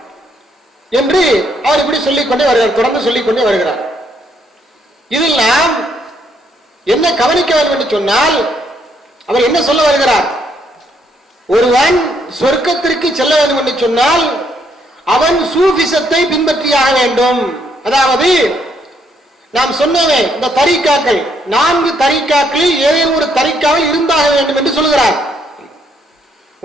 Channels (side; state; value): both; normal; correlation 0.72